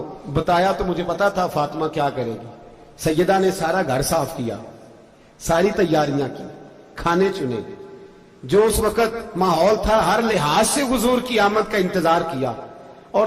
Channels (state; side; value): identical; both; correlation 1.00